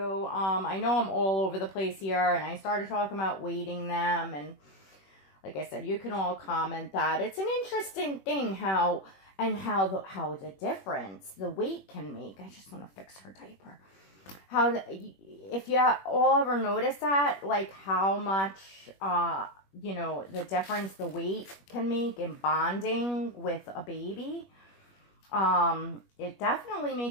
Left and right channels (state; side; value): late; right; 21 ms